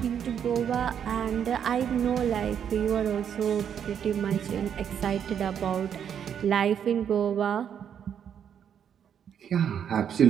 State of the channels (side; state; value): left; quieter; 8.5 dB